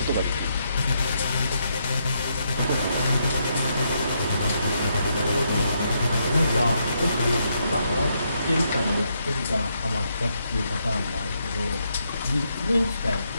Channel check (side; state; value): both; inverted; correlation -0.78